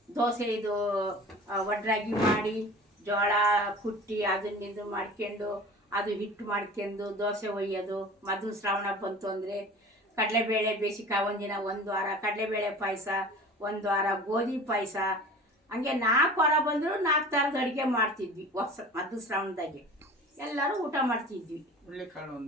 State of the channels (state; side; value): normal; both; correlation 0.40